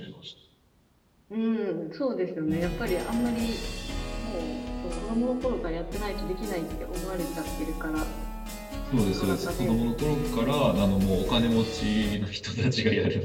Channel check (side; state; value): both; identical; correlation 1.00